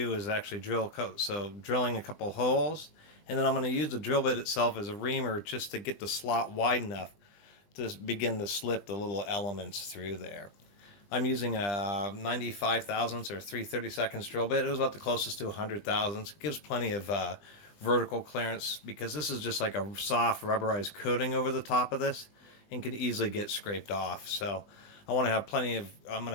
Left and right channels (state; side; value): late; right; 20 ms